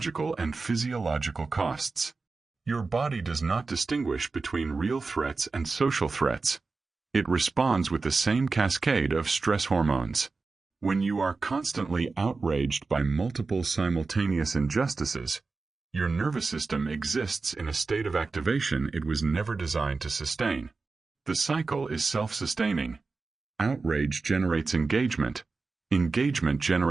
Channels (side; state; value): left; quieter; 4.1 dB